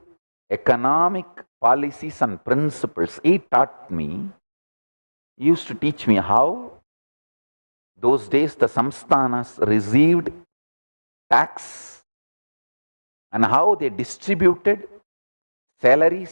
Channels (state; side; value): inverted; both; correlation -1.00